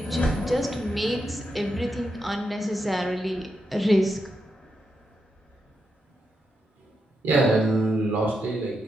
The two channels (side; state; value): both; normal; correlation 0.84